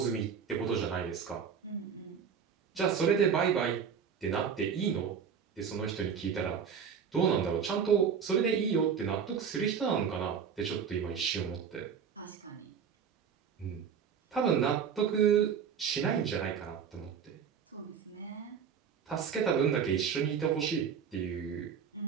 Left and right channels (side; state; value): left; quieter; 7.0 dB